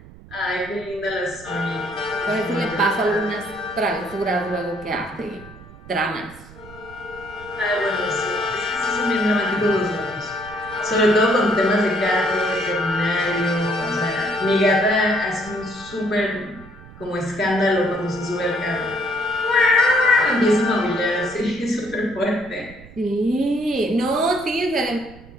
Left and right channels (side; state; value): right; noise; rumble, 19 dB below the sound